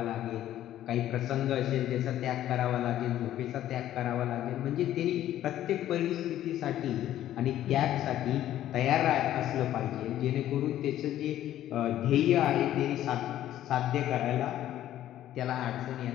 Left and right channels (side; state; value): right; quieter; 12.6 dB